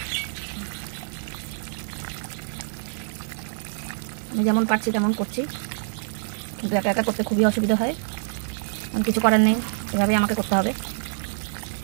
আমি যেমন পারছি তেমন করছি, কিন্তু একা একা করতে খুবই অসুবিধা হয়। আমি কিছু করার নেই, এভাবেই আমাকে করতে হবে।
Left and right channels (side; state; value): left; silent; digital silence